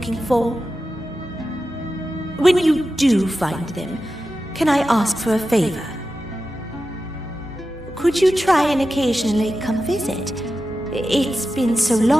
for. When you do find them, can I ask for a favor? Could you try and occasionally come visit? It's been so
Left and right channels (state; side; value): normal; both; correlation 0.92